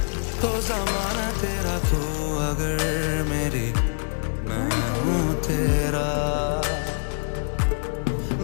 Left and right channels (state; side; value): silent; right; digital silence